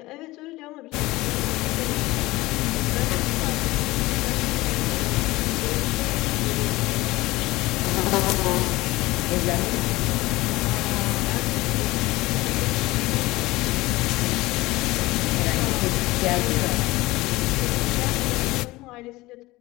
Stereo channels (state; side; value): quieter; right; 19.8 dB